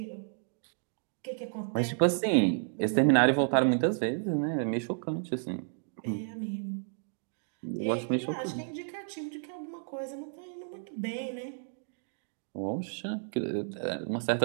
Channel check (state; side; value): silent; left; digital silence